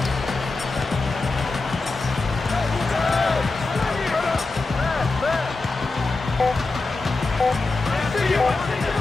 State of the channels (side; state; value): right; quieter; 3.5 dB